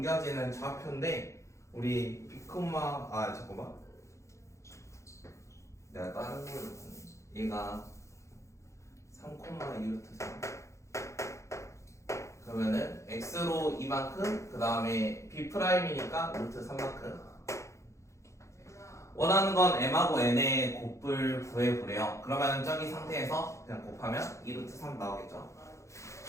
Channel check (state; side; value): late; right; 0.14 ms